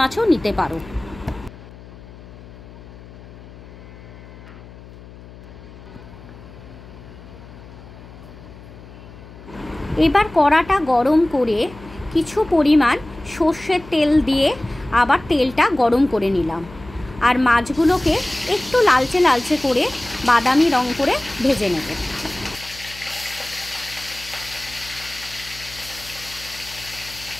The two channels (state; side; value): noise; left; hum, 18 dB below the sound